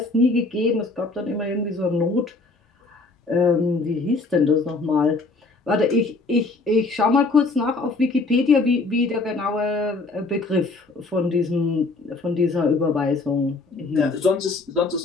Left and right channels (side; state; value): right; quieter; 3.5 dB